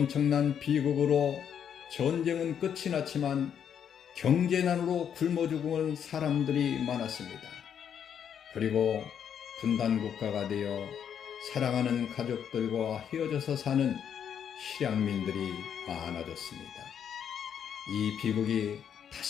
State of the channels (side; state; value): right; quieter; 8.4 dB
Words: 비극으로 전쟁은 끝이 났지만 경제난으로 굶어 죽은 사람들이 많았습니다. 그리고 분단국가가 되어 사랑하는 가족들과 헤어져서 사는 실향민들이 많아졌습니다. 이 비극이